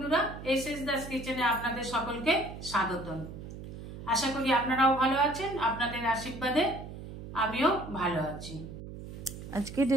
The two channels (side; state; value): right; noise; hum, 11 dB below the sound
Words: एसएस दास किचेने आपनादेर सकलके स्वागतम। आशा करी आपनाराओ भालो आछेन, आपनादेर आशीर्वादे आमिओ भालो आछि। आजकेर